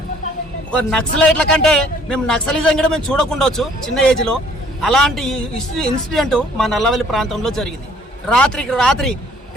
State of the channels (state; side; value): normal; both; correlation 0.58